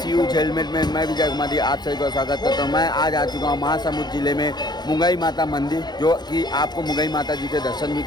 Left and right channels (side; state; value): right; late; 0.20 ms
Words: यूज हेलमेट में। मैं विजय कुमार आप सभी का स्वागत करता हूँ। मैं आज आ चुका हूँ महासमुंद जिले में मुंगई माता मंदिर, जो कि आपको मुंगई माता जी के दर्शन भी